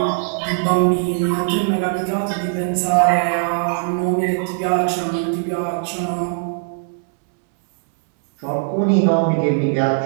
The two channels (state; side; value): silent; left; 66 dB below the other